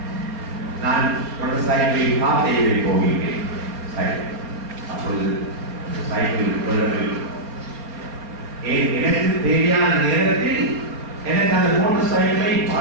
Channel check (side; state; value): left; late; 4.2 ms